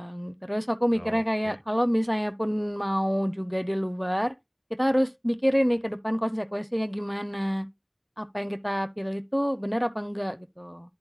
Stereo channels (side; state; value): both; identical; correlation 1.00